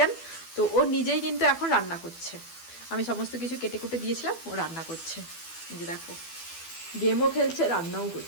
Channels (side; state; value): right; late; 12 ms